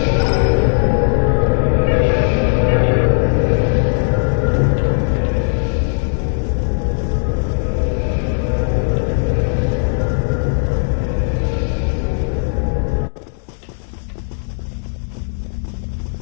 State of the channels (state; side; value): silent; right; digital silence